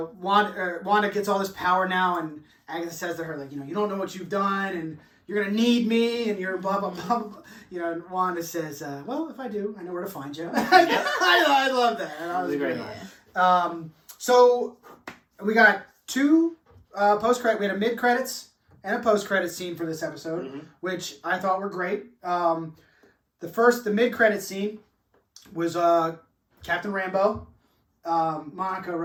gets all this power now, and Agatha says to her, like, you don't know what you've done, and you're going to need me, and you're blah, blah, blah, blah. And Wanda says, well, if I do, I know where to find you. I love that. That was a great line. So we got two post-credit. We had a mid-credits and a post-credit scene for this episode, which I thought were great. The mid-credit scene was Captain Rambeau, Monica,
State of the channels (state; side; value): identical; both; correlation 1.00